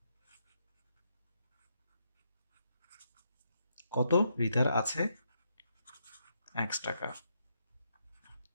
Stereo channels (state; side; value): inverted; both; correlation -0.78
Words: কত? রিতার আছে x টাকা।